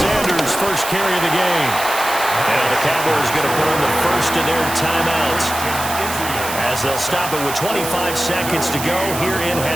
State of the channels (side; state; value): right; noise; hiss, 7 dB below the sound